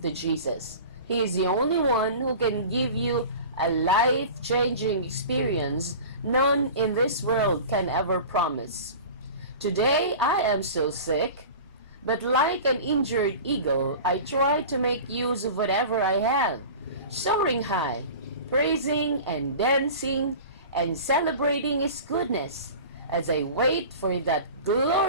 to Jesus. He is the only one who can give you a life-changing experience none in this world can ever promise. Today, I am still sick, but like an injured eagle, I try to make use of whatever I have, soaring high, praising and dancing and celebrating His goodness as I wait for that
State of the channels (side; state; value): both; inverted; correlation -0.37